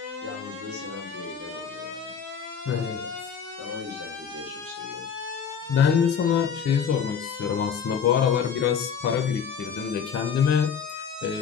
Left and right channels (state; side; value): quieter; right; 7.1 dB